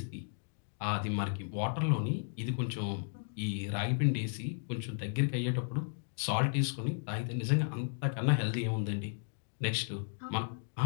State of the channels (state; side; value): silent; right; digital silence